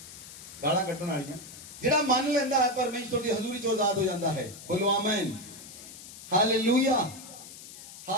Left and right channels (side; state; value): left; noise; hiss, 15 dB below the sound